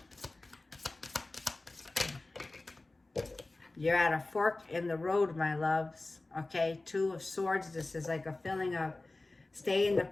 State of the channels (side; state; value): right; quieter; 3.0 dB